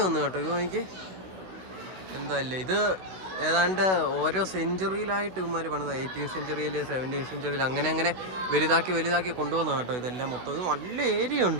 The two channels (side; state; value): left; late; 16 ms